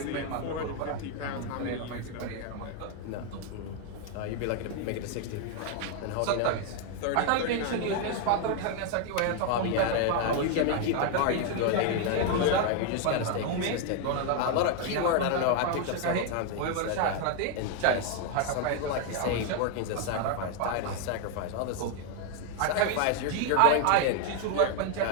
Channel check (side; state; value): both; different; correlation 0.01